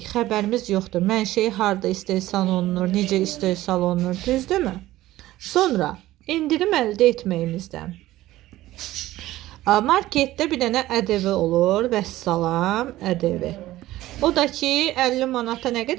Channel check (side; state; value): left; quieter; 15.9 dB